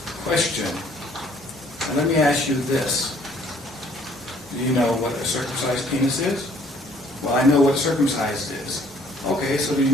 Question. And let me ask you this. Do you know what a circumcised penis is? Well, I know what circumcised is. Okay, so do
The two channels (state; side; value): normal; both; correlation 0.61